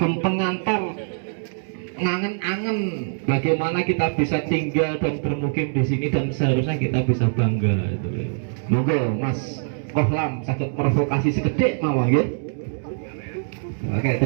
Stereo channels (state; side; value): silent; left; digital silence